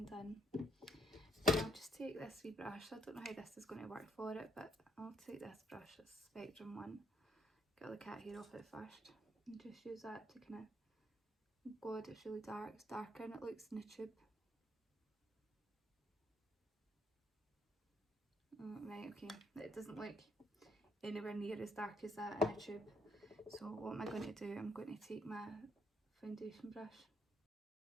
in. And I'll just take this wee brush. I don't know how this is going to work for it, but I'll take this brush, this Spectrum one, get all the cat hair off it first, and just use that to kind of, oh god, it's really dark, it's darker than it looks in the tube. Right, okay, it doesn't look anywhere near as dark as that in a tube. So what am I going to do? I'm going to take my foundation brush.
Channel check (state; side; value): normal; both; correlation 0.70